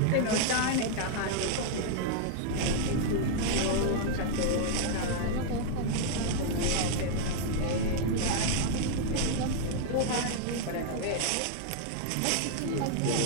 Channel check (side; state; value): both; different; correlation -0.01